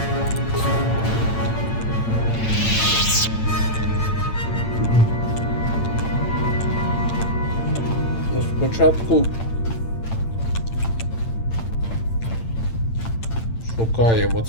Ну, спочатку шукаємо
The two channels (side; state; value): right; late; 8.9 ms